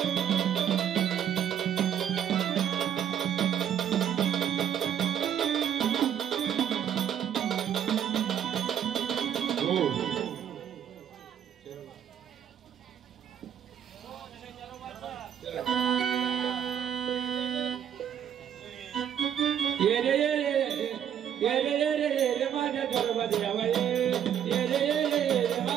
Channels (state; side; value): quieter; left; 9.4 dB